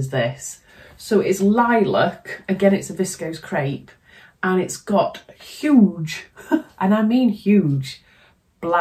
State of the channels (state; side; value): identical; both; correlation 1.00